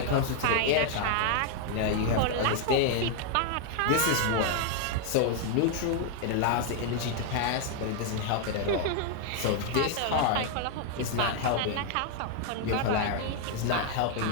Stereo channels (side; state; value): both; different; correlation 0.00